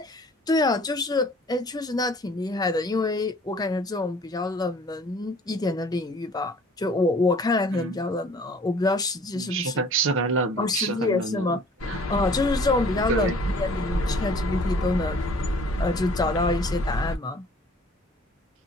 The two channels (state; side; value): normal; both; correlation 0.52